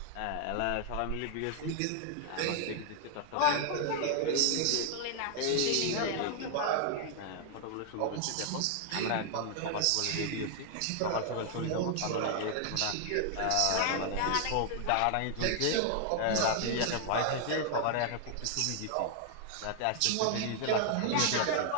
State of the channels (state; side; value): different; both; correlation 0.00